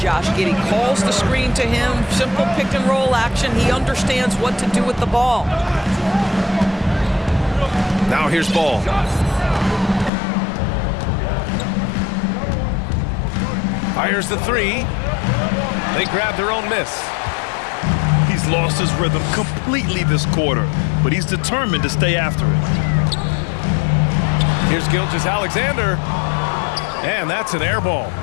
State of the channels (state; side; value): drops out; right; at 10.1 s